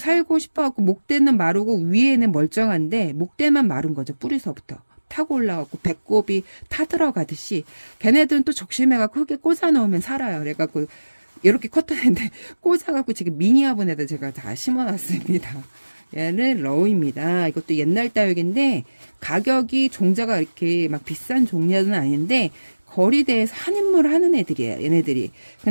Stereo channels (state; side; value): inverted; both; correlation -1.00